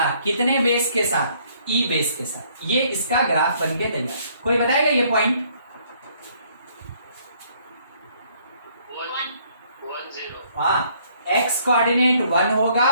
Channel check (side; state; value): both; inverted; correlation -0.64